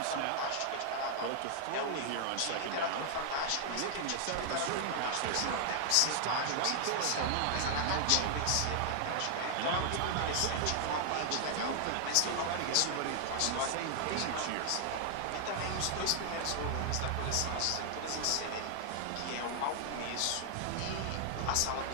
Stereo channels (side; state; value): both; different; correlation 0.00